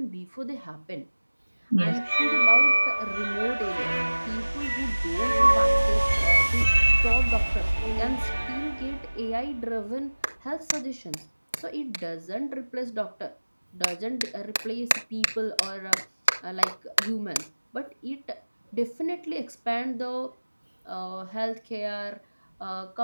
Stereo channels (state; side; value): inverted; both; correlation -1.00